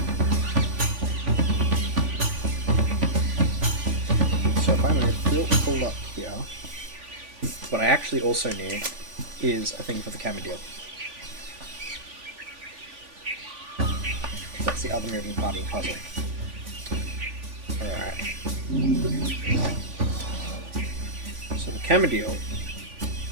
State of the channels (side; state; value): left; late; 3.5 ms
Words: So if I'm going to full up here, what I actually also need is a thing for the camera deal. That's the other moving part of the puzzle. Alright. So the camera deal